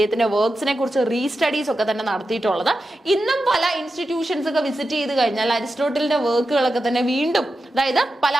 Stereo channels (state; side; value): normal; both; correlation 0.90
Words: വർക്ക്സിനെ കുറിച്ച് റീസ്റ്റഡീസ് ഒക്കെ തന്നെ നടത്തിയിട്ടുള്ളത്. ഇന്നും പല ഇൻസ്റ്റിറ്റ്യൂഷൻസ് ഒക്കെ വിസിറ്റ് ചെയ്ത് കഴിഞ്ഞാൽ അരിസ്റ്റോട്ടലിന്റെ വർക്കുകളൊക്കെ തന്നെ വീണ്ടും, അതായത് പല